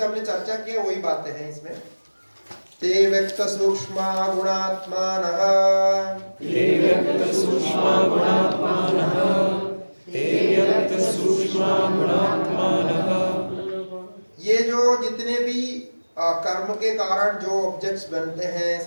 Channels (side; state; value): both; inverted; correlation -1.00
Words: हमने चर्चा किया वही बातें हैं इसमें। ते व्यक्त सूक्ष्म गुणात्मानः, ते व्यक्त सूक्ष्म गुणात्मानः, ते व्यक्त सूक्ष्म ये जो जितने भी कर्म के कारण जो ऑब्जेक्ट्स बनते हैं,